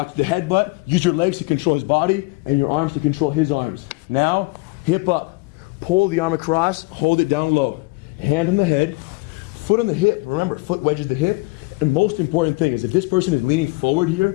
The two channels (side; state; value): right; quieter; 25.8 dB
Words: the headbutt. Use your legs to control his body and your arms to control his arms. Now, hip up. Pull the arm across, hold it down low. Hand on the head, foot on the hip. Remember, foot wedges the hip. And most important thing is if this person is leaning forward